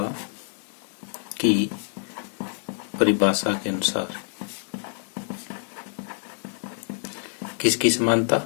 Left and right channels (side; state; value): right; silent; 61 dB below the other